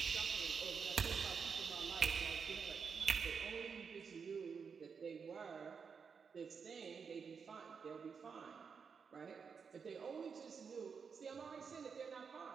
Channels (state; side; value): quieter; left; 6.0 dB